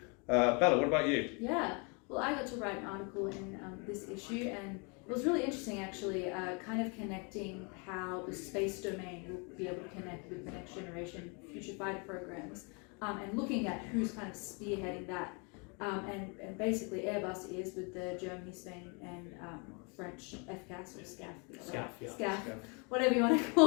Bella, what about you? Yeah, well, I got to write an article in this issue, and it was really interesting actually, kind of connecting how the space domain will be able to connect with the next generation future fighter programs, and looking at who's kind of spearheading that. And basically Airbus is with the Germany, Spain and French FCAS or SCAF, whatever you want to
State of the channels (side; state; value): right; quieter; 33.7 dB